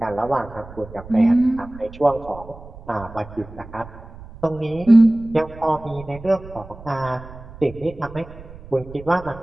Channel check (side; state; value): right; noise; rumble, 17 dB below the sound